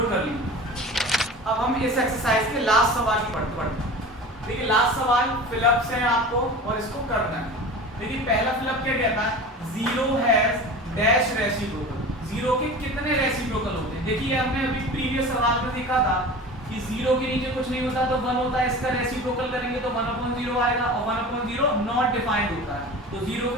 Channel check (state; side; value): normal; both; correlation 0.35